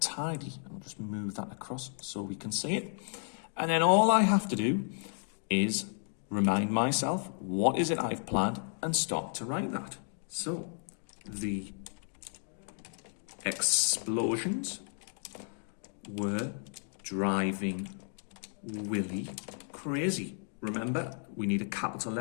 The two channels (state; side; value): silent; right; 56 dB below the other